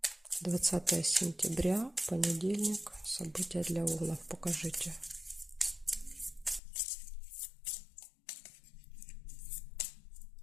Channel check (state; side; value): drops out; right; at 6.6 s